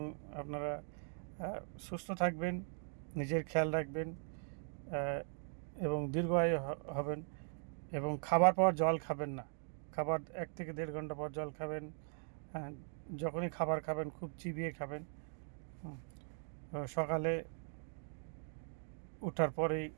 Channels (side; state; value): left; silent; 51 dB below the other